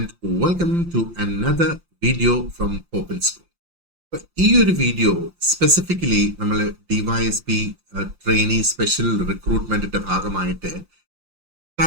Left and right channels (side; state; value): left; late; 5.7 ms